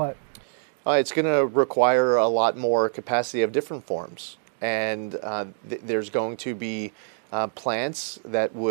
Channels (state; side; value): silent; left; digital silence